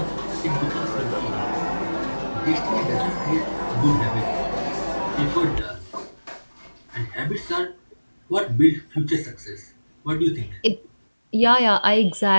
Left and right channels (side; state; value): both; inverted; correlation -1.00